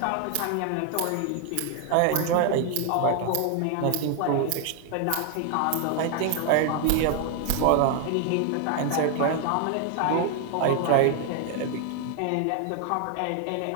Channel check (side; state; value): both; different; correlation 0.00